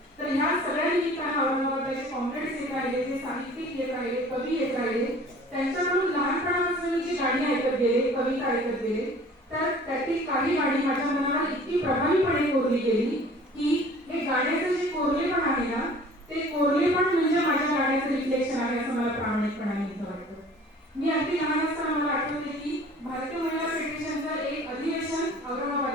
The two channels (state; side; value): normal; both; correlation 0.48